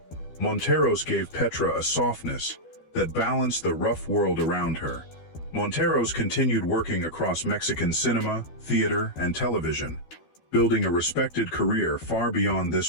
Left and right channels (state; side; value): late; right; 12 ms